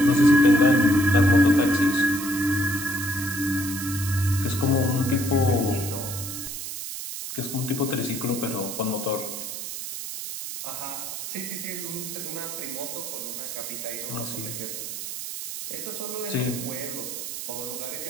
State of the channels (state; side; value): noise; right; hiss, 7 dB below the sound